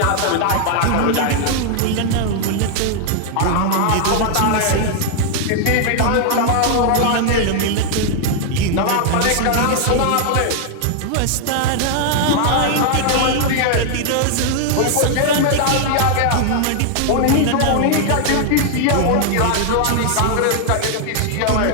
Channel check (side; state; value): both; different; correlation 0.00